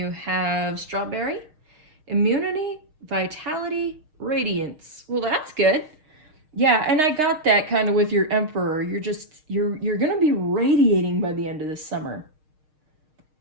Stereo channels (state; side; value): late; left; 6.6 ms